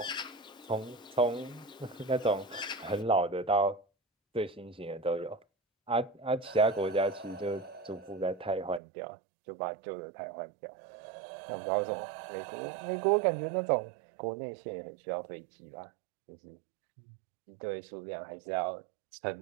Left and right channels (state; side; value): drops out; left; at 8.8 s